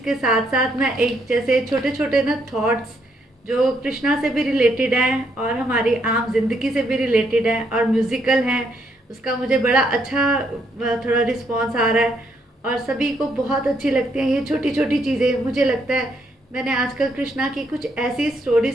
साथ साथ मैं एक जैसे छोटे छोटे ना थॉट्स जो कृष्णा से भी रिलेटेड हैं और हमारी आम जिंदगी से भी रिलेटेड हैं और म्यूज़िकल हैं, उसका मुझे बड़ा अच्छा थोड़ा रिस्पॉन्स आ रहा है और सभी को बहुत अच्छी लगती हैं ये छोटी छोटी चीज़ें। मुझे लगता है मैंने आजकल कृष्णा की कुछ ऐसी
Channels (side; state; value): both; normal; correlation 0.74